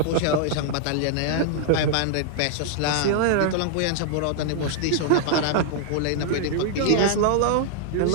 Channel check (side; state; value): both; different; correlation -0.01